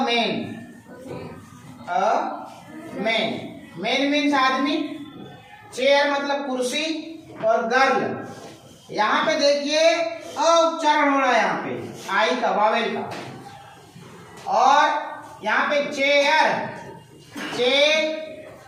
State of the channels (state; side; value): identical; both; correlation 1.00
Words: मैन मीन्स आदमी, चेयर मतलब कुर्सी, और गर्ल यहाँ पे देखिए अ उच्चारण हो रहा है यहाँ पे आई का, वावेल का। और यहाँ पे चेयर